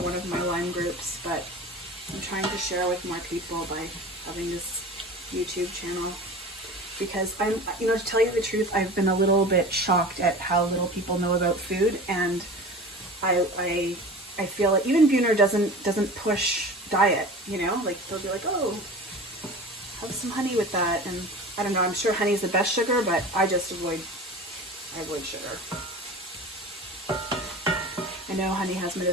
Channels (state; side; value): normal; both; correlation 0.36